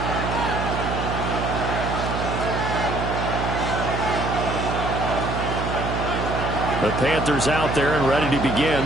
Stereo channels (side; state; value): right; noise; hum, 3 dB below the sound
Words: The Panthers out there and ready to begin